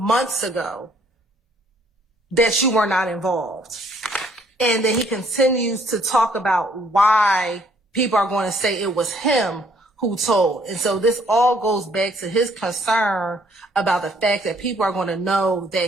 ago that you were not involved. And then he continues to talk about why people are going to say it was him who told. And so this all goes back to his concern about the fact that people are going to know that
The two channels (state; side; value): normal; both; correlation 0.64